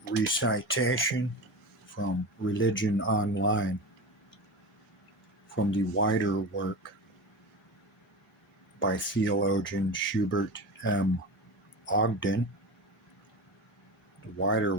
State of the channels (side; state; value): both; normal; correlation 0.27